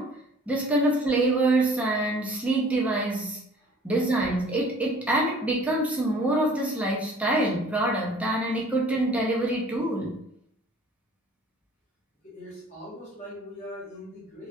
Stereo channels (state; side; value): normal; both; correlation 0.51